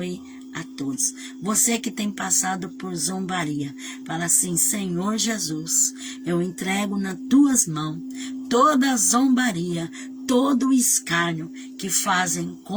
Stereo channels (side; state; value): both; identical; correlation 1.00